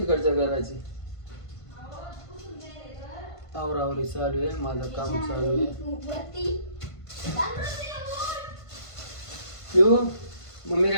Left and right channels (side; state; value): right; late; 1.5 ms